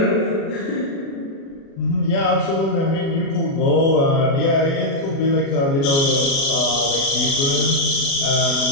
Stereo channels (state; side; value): late; right; 36 ms